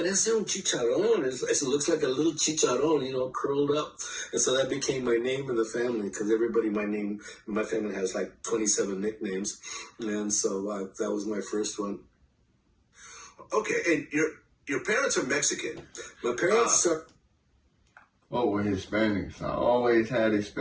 un chicharrón." It looks like a little chicharrón, curled up. And so that became my name in the family, because everybody, my family has like 27 nicknames. And so that was my first one. Okay, and your parents are Mexican. My parents are... Oh, we're Hispanics. I always had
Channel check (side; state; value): both; identical; correlation 1.00